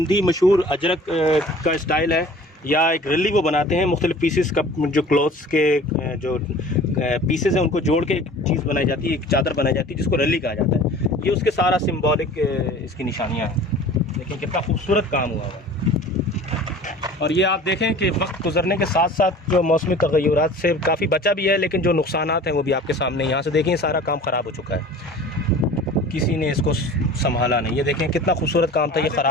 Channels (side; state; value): both; normal; correlation 0.44